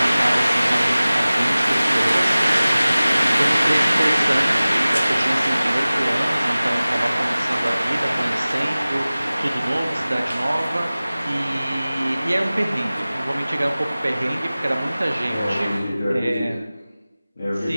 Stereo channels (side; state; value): both; inverted; correlation -0.98